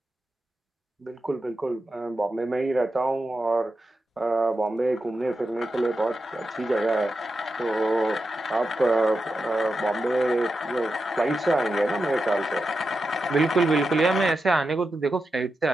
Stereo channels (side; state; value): both; normal; correlation 0.89